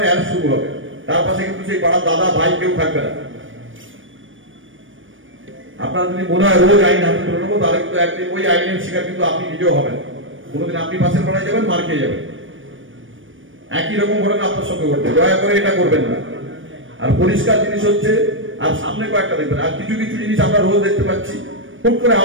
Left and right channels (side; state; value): left; late; 0.57 ms